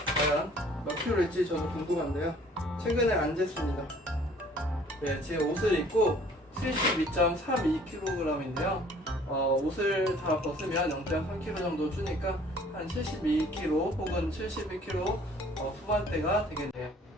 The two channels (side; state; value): both; normal; correlation 0.55